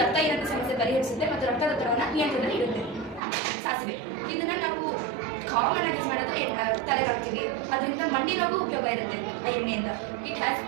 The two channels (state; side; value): drops out; left; at 3.2 s